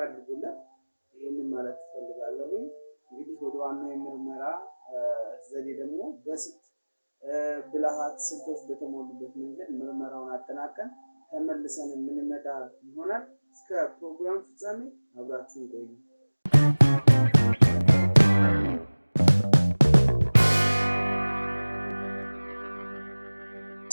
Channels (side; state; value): both; inverted; correlation -1.00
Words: አድርጉለት። ይህንን ማለት ትፈልጋለሁ። እንግዲህ ወደ ዋናው የምርመራ ዘዴ ደግሞ በስልት ብልሃት ስልቶች በተሞሉበት መንገድ ምርመራውን አጠናቀን ተመልሰን የምንመጣ ይሆናል። እስከ ፕሮግራም ፍጻሜ አብራችሁን ቆዩ።